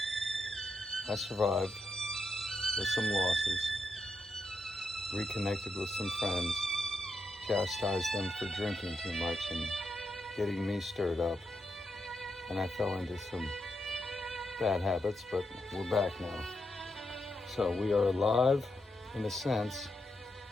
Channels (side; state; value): both; normal; correlation 0.83